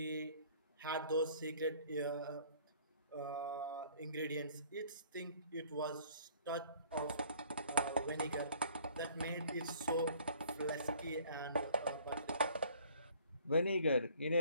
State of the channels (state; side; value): inverted; both; correlation -0.55